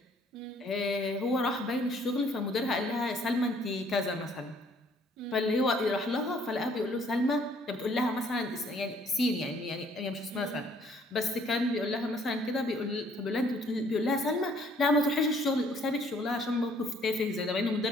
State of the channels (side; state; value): both; normal; correlation 0.62